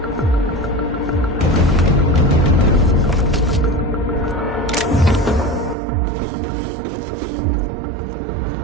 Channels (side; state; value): left; drops out; at 5.8 s